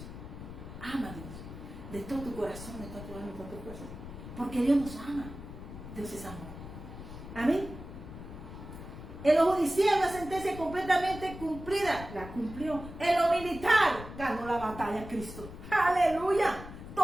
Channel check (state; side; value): noise; left; rumble, 12 dB below the sound